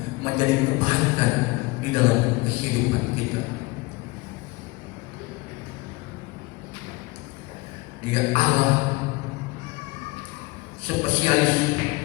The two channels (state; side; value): quieter; right; 23.3 dB